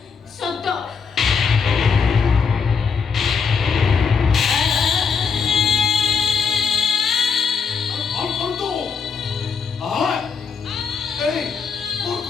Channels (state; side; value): quieter; right; 5.8 dB